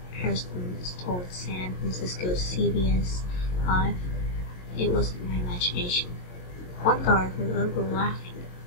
Harrison told San Francisco CBS 5. It wasn't my imagination. One guard heard a little girl laughing.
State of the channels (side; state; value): right; late; 22 ms